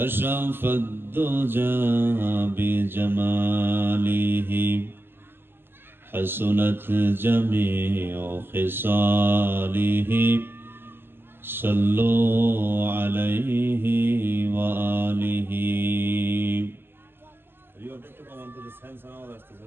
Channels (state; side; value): late; left; 0.10 ms